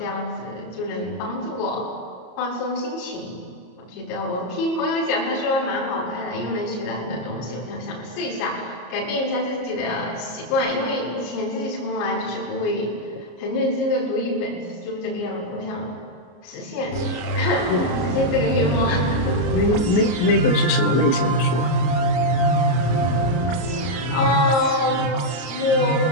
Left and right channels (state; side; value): late; right; 33 ms